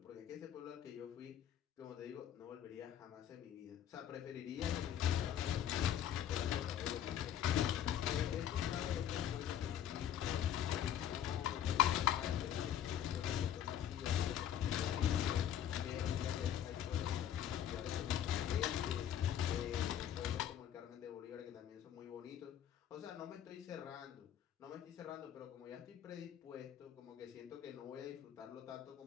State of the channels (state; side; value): quieter; right; 10.2 dB